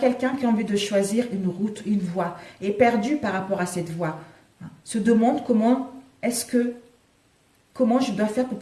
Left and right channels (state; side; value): identical; both; correlation 1.00